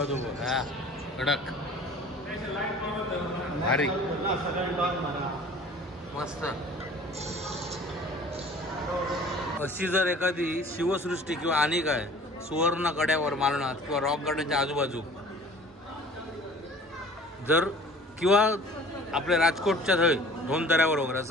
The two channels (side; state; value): both; normal; correlation 0.47